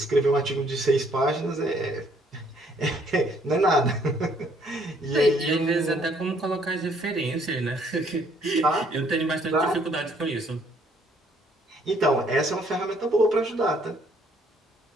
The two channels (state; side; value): normal; both; correlation 0.65